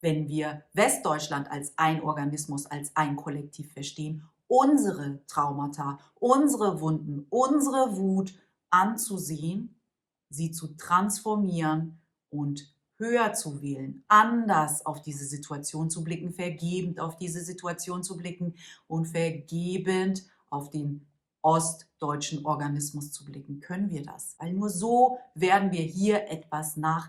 wenn wir Westdeutschland als ein Organismus, als ein Kollektiv verstehen, unsere Traumata, unsere Wunden, unsere Wut anzusehen, sie zu transformieren und höher zu wählen, anders auf diese Situation zu blicken, vergebend auf diese Situation zu blicken und vergebend auf den ostdeutschen Organismus zu blicken. Können wir das? Weil nur so werden wir hier etwas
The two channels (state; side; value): identical; both; correlation 1.00